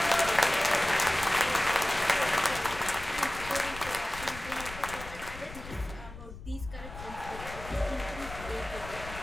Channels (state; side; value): noise; left; rumble, 13 dB below the sound